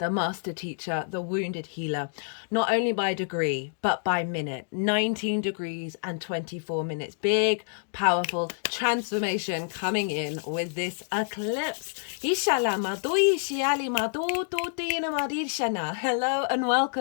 master teacher, the wounded healer, not only by degree but by minute. 19 degrees and 24 minutes. Big, powerful transformation coming in with this eclipse. Hello and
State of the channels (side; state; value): right; silent; digital silence